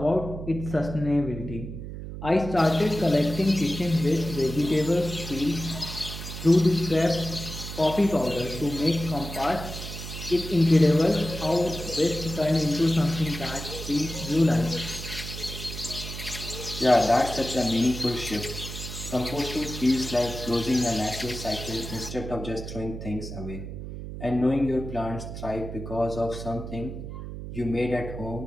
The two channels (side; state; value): right; noise; hum, 9 dB below the sound